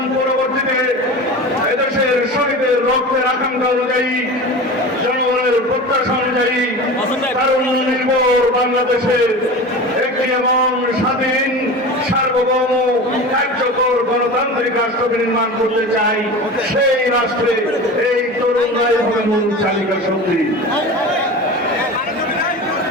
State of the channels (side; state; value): both; normal; correlation 0.32